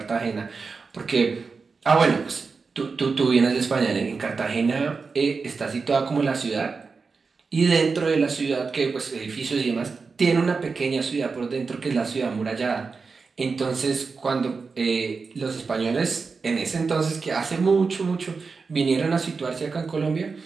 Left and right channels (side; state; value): left; quieter; 4.7 dB